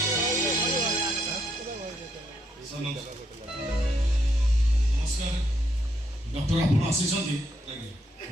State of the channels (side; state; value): both; normal; correlation 0.76